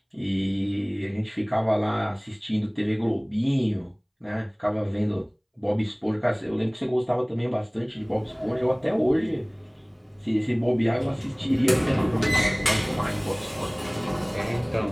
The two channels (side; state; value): both; identical; correlation 1.00